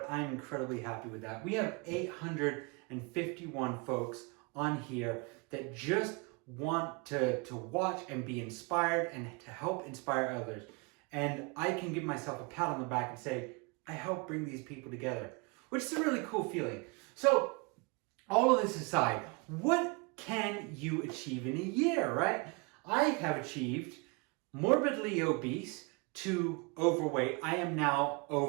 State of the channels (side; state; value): left; quieter; 28.8 dB